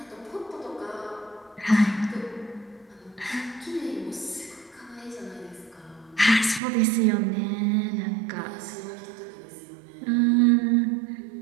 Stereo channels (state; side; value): drops out; left; at 6.6 s